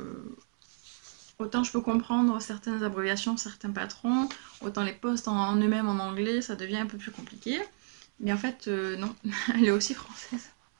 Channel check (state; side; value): silent; left; 57 dB below the other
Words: autant je peux comprendre certaines abréviations, certains patrons, autant les posts en eux-mêmes en anglais ça devient un peu plus compliqué. Mais en fait non, elle est aussi française.